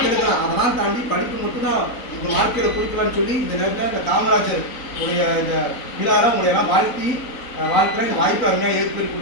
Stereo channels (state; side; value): late; right; 4.0 ms